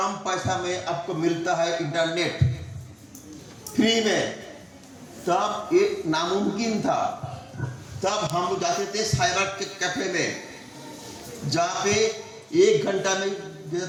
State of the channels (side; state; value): both; identical; correlation 1.00